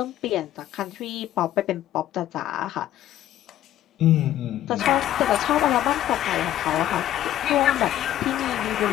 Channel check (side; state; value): right; quieter; 12.7 dB